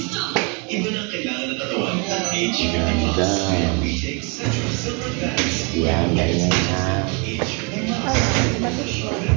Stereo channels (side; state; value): left; quieter; 32.9 dB